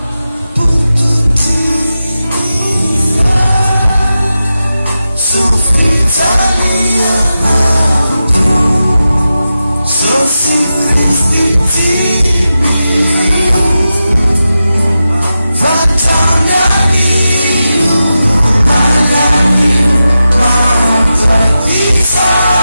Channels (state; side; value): inverted; both; correlation -0.91